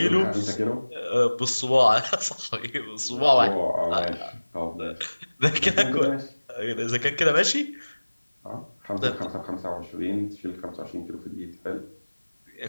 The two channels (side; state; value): both; inverted; correlation -1.00